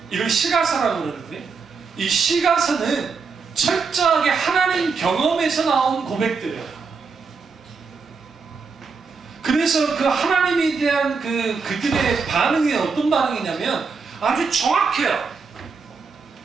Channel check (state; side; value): quieter; left; 5.0 dB